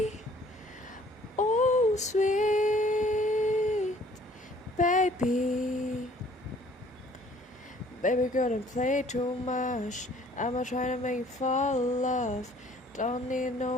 Oh, sweet baby. Baby girl, don't play too much. I'ma try to make you fall in love. Don't need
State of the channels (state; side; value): normal; both; correlation 0.56